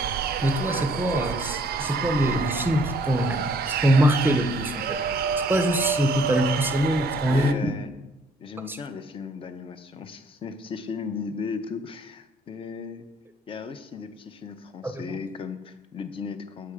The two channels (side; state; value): both; normal; correlation 0.62